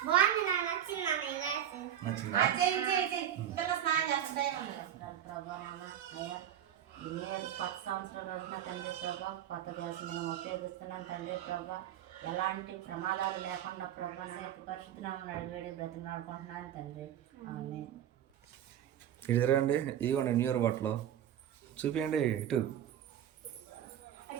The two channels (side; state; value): left; quieter; 10.5 dB